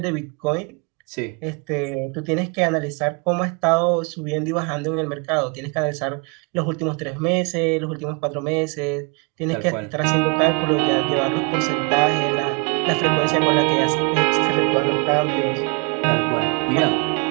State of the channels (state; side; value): quieter; left; 33.7 dB